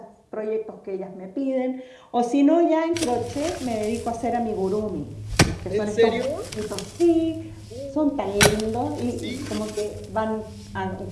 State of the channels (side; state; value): both; identical; correlation 1.00